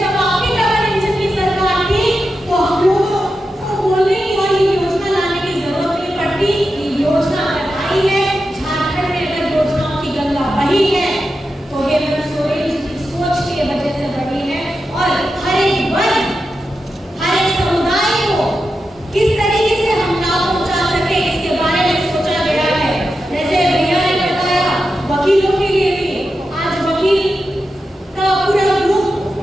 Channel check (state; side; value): normal; both; correlation 0.89